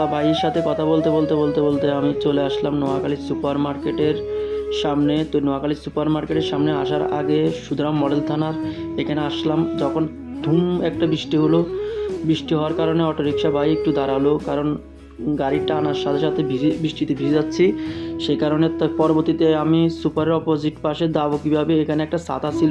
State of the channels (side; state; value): both; identical; correlation 1.00